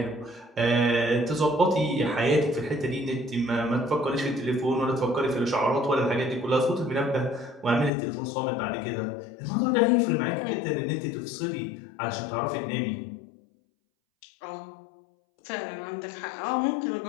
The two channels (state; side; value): drops out; right; at 7.9 s